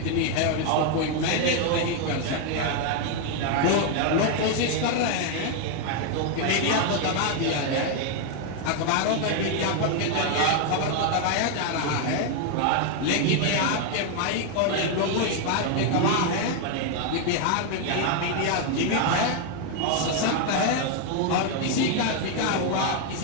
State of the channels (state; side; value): different; both; correlation 0.01